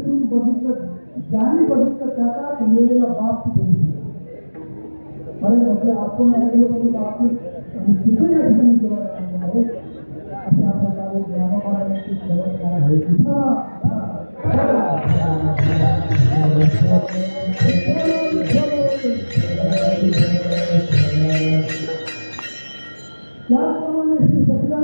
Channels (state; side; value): inverted; both; correlation -1.00